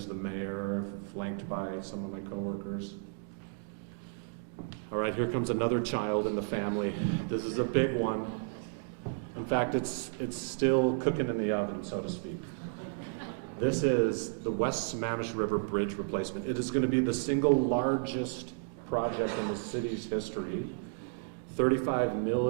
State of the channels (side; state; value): left; quieter; 40.0 dB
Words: the mayor, flanked by some of my coworkers. All right, here comes another child in the family. This is a big one. In fact, it's still cooking in the oven, so to speak. This is the West Sammamish River Bridge replacement. It is going to be the single largest project in the city's history. $35